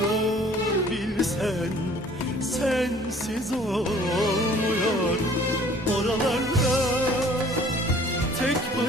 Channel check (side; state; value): both; normal; correlation 0.53